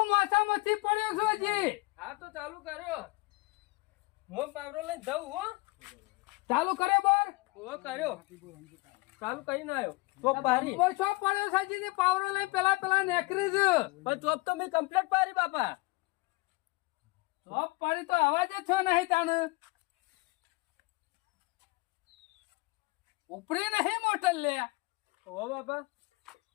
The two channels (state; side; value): quieter; right; 24.0 dB